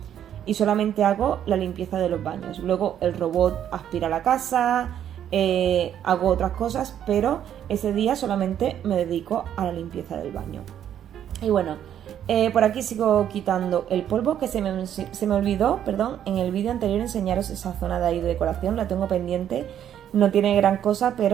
y solamente hago la limpieza de los baños. Luego el robot aspira la casa, hago otras cosas, pero ese día solamente me dedico a la limpieza del baño. Y bueno, por aquí sigo quitando el polvo, que se me olvidó, perdón, en el vídeo anterior enseñaros esa zona de ahí de decoración, la tengo pendiente, no tiene gran cosa,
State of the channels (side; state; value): left; quieter; 10.1 dB